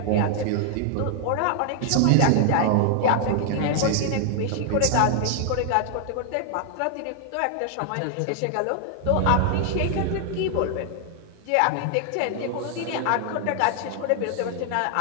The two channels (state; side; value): different; both; correlation 0.00